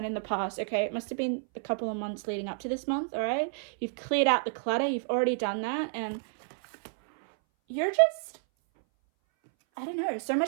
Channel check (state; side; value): silent; left; 58 dB below the other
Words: in the past, okay? It must have been a couple of months leading up to this month, all right? You've cleared out the clutter. You've already done that, and you're just, I don't know, so